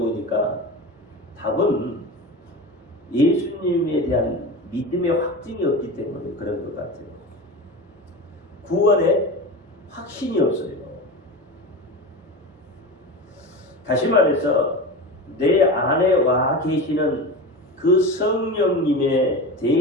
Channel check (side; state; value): both; normal; correlation 0.27